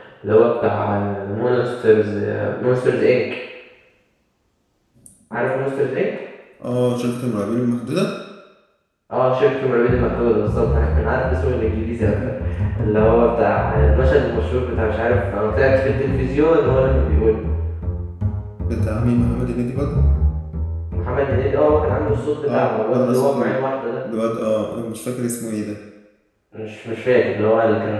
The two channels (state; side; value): identical; both; correlation 1.00